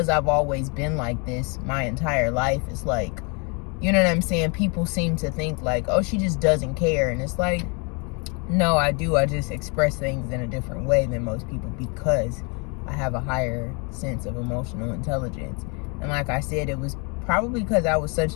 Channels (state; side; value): quieter; right; 33.6 dB